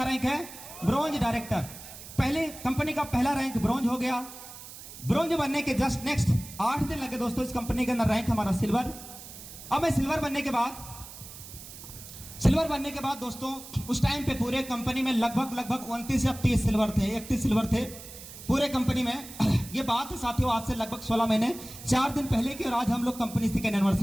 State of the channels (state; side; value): noise; right; hiss, 14 dB below the sound